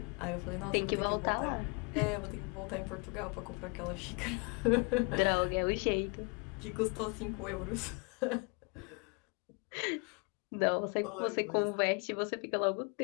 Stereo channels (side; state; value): right; quieter; 32.7 dB